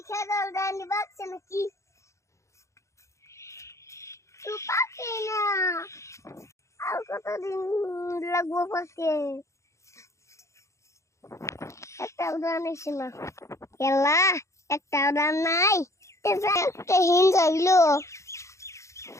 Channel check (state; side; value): late; right; 0.14 ms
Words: খেলাল দানি বাচ্চা নাকি তো পাকে না আর কতদিন লাগবো পাকে একটা উদাহরণ এসে না খেলা একটা উদাহরণ নাই একটা হিন যাইলো